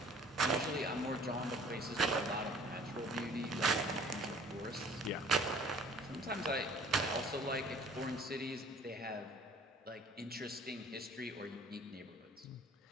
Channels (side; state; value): both; normal; correlation 0.51